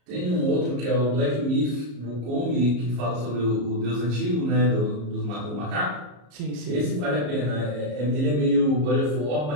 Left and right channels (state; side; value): late; left; 34 ms